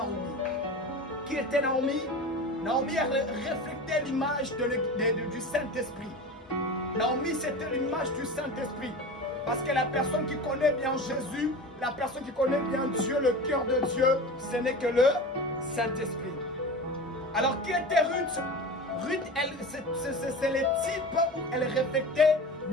Qui était Naomi? Naomi a reflété l'image du Saint-Esprit. Naomi, c'était l'image du Saint-Esprit. Parce que la personne qui connaît bien Jésus, la personne qui connaît bien Dieu, le cœur de Dieu, ce n'est que le Saint-Esprit. Alors, qui était Ruth? Ruth, c'est le type où elle reflétait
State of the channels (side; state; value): both; normal; correlation 0.31